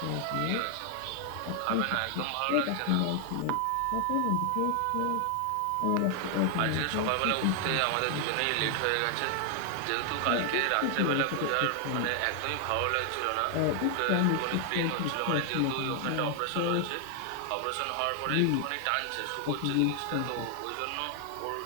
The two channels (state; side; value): different; both; correlation 0.00